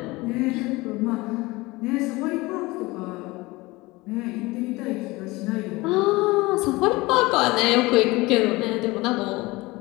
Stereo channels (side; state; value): right; quieter; 21.8 dB